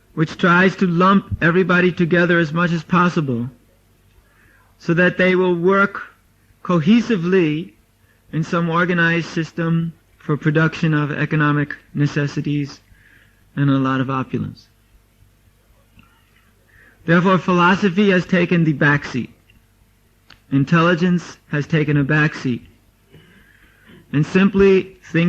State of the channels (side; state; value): both; identical; correlation 1.00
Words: which tries to lump everybody together as much as possible so that they will work cohesively in some organized system for production of economic necessities and a lot of opulence. Therefore, philosophy has taken the back seat. Intelligence has taken a back seat. And simply